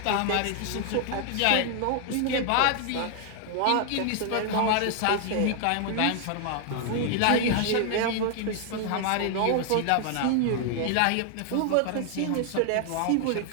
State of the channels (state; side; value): different; both; correlation 0.00